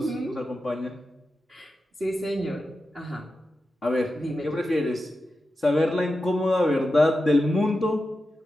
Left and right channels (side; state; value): both; normal; correlation 0.91